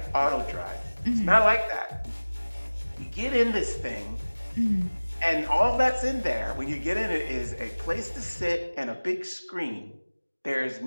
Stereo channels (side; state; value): both; inverted; correlation -1.00